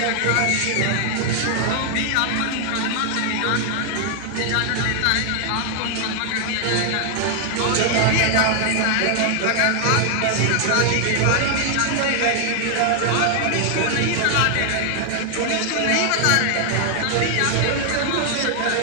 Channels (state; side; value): different; both; correlation 0.00